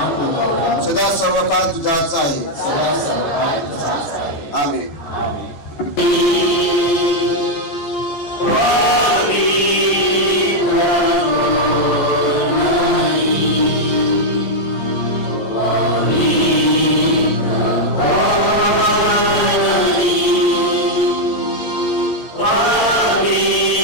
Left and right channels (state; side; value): late; right; 14 ms